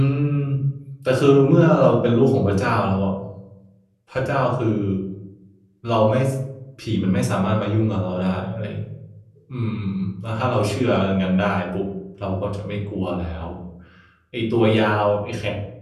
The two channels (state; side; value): identical; both; correlation 1.00